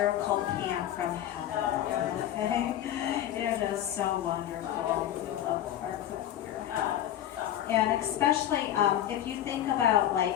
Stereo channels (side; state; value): right; quieter; 11.6 dB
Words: pan from heaven, okay? It is so wonderful. We love our cookware. And especially if you think about